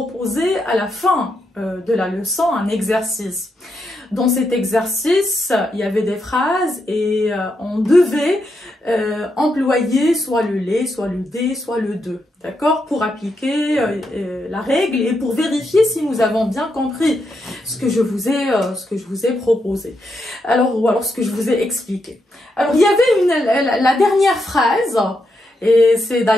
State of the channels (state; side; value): normal; both; correlation 0.82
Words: à la fin de la leçon un exercice. Dans cet exercice, il y avait des phrases et on devait employer soit le les, soit le des, soit le de, d'accord, pour appliquer la règle et pour vérifier si nous avons bien compris ce que je vous ai proposé. Alors, ou alors ce que je vous ai expliqué. Alors, il y avait la dernière phrase. Et c'est